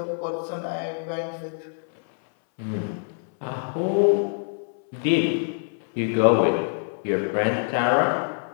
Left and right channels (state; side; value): silent; right; 62 dB below the other